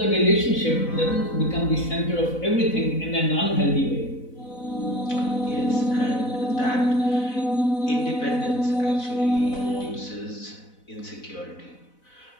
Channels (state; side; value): late; right; 4.0 ms